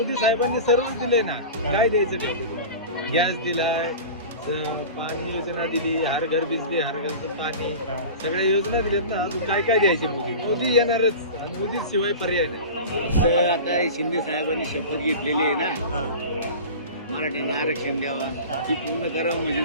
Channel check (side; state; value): both; inverted; correlation -0.33